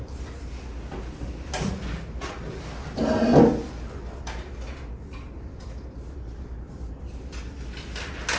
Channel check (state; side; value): identical; both; correlation 1.00